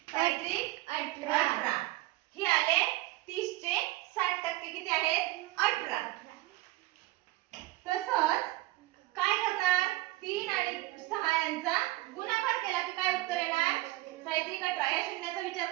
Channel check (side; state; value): left; quieter; 19.1 dB